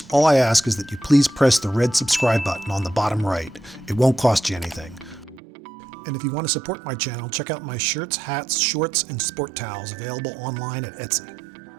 all I ask is that you please press the red subscribe button on the bottom right. It won't cost you anything. And if you want to support my channel, check out my shirts, hats, shorts, and sport towels available online at Etsy.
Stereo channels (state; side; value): drops out; left; at 5.4 s